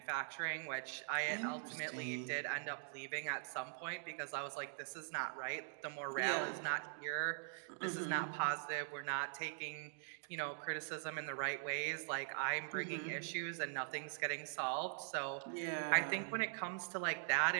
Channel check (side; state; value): left; silent; digital silence